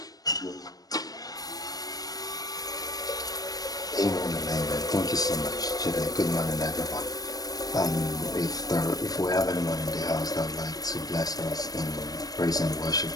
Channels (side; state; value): right; late; 0.18 ms